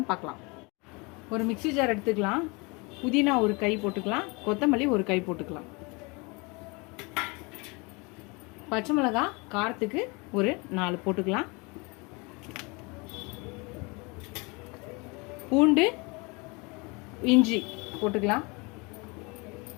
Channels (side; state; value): right; quieter; 28.4 dB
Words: பார்க்கலாம். ஒரு மிக்ஸி ஜார் எடுத்துக்கலாம். புதினா ஒரு கை போட்டுக்கலாம், கொத்தமல்லி ஒரு கை போட்டுக்கலாம். பச்சை மிளகாய் காரத்துக்கு ஒரு 4 போட்டுக்கலாம். பூண்டு இஞ்சி போட்டுக்கலாம்.